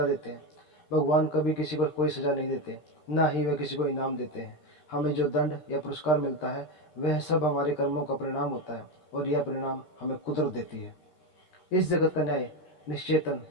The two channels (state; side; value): late; right; 13 ms